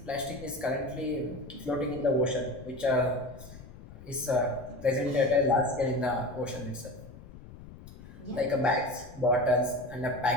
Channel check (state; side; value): noise; left; rumble, 17 dB below the sound